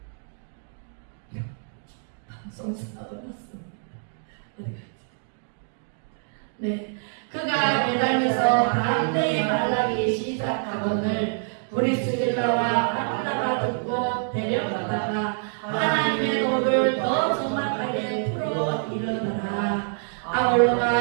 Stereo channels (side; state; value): left; silent; 61 dB below the other